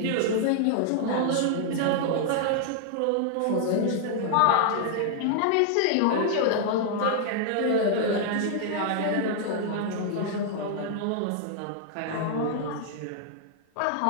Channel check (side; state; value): both; different; correlation -0.01